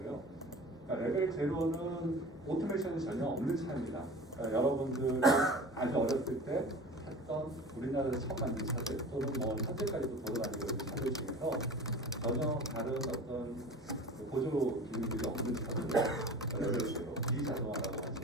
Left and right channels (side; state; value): both; normal; correlation 0.38